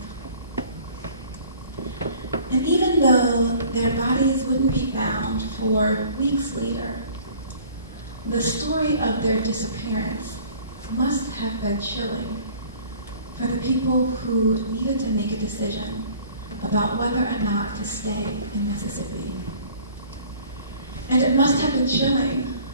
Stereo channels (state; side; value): inverted; both; correlation -0.51